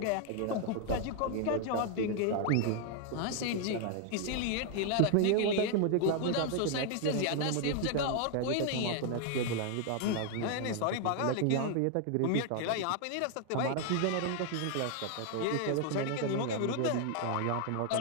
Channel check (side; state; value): both; different; correlation 0.00